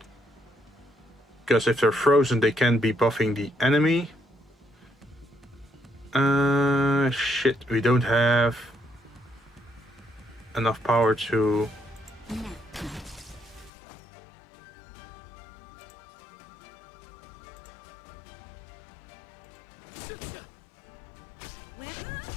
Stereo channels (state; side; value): drops out; right; at 13.7 s